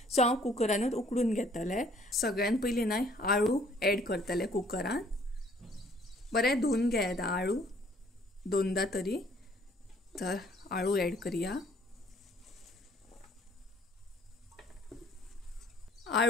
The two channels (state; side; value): normal; both; correlation 0.59